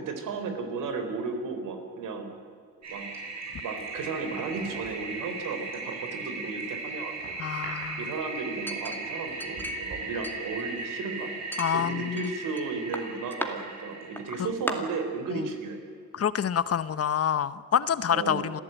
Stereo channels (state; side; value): normal; both; correlation 0.03